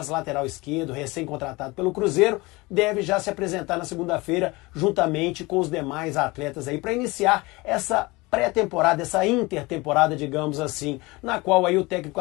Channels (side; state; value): right; quieter; 23.2 dB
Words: lateral esquerdo, recém-contratado pelo Cruzeiro, deve já se apresentar na segunda-feira, juntamente com os demais atletas aí, para iniciar essa pré-temporada, essa intertemporada, digamos assim, na qual aí o técnico